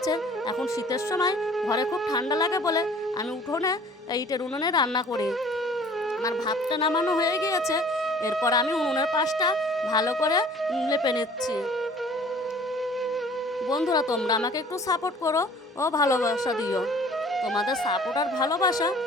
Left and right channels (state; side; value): normal; both; correlation 0.51